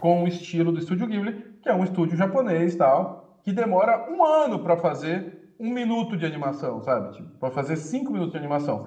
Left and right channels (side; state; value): both; identical; correlation 1.00